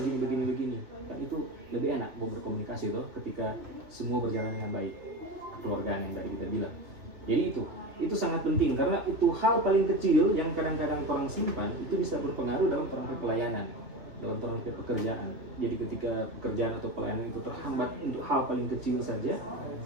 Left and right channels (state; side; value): late; left; 2.8 ms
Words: begini kan, itu lebih enak mau berkomunikasi ketika semua berjalan dengan baik, kekeluargaan yang tadi kita bilang. Jadi itu sangat penting karena itu hal paling kecil yang kadang-kadang orang simpan itu bisa berpengaruh dalam perangkat pelayanan, dalam perangkat pekerjaan. Jadi ketika pekerjaan atau pelayanan itu terhambat untuk hal paling kecil saja,